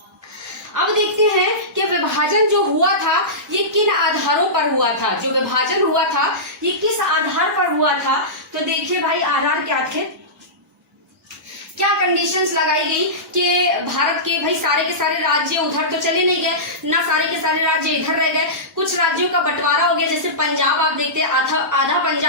अब देखते हैं कि विभाजन जो हुआ था ये किन आधारों पर हुआ था, जो विभाजन हुआ था ये किस आधार पर हुआ था। तो देखिए भाई, आधार क्या थे, क्या कंडीशंस लगाई गई कि भारत के भाई सारे के सारे राज्य उधर तो चले नहीं गए ना, सारे के सारे राज्य इधर रह गए, कुछ राज्यों का बंटवारा हो गया। जैसे पंजाब आप देखते हैं, आधा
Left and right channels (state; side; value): normal; both; correlation -0.18